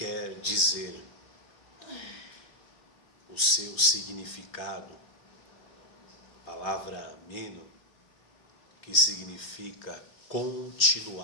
dizer, o seu significado, a palavra meno, que significa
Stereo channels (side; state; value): right; late; 3.4 ms